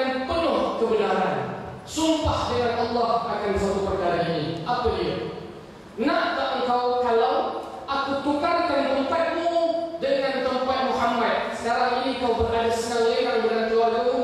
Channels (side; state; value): both; identical; correlation 1.00